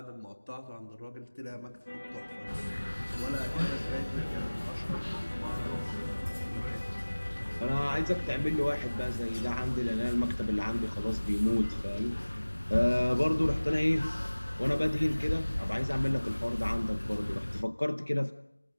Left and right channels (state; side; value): inverted; both; correlation -1.00